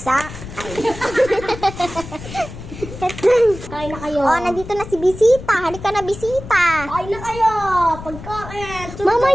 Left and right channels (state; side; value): noise; left; rumble, 12 dB below the sound